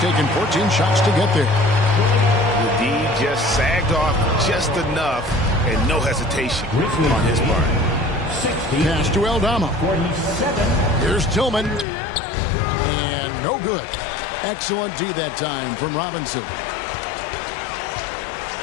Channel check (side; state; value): right; drops out; at 11.9 s